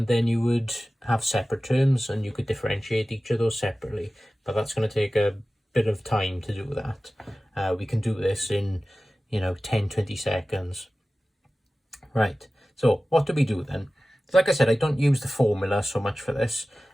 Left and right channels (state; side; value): normal; both; correlation 0.96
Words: then you would have separate terms and you could differentiate each of those separately, but that's going to take a bit of time to do that. We can do this in 10-20 seconds. Right, so what do we do then? Like I said, I don't use the formula so much for this.